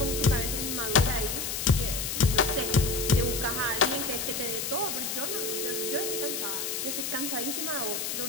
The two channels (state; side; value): noise; left; hiss, 3 dB below the sound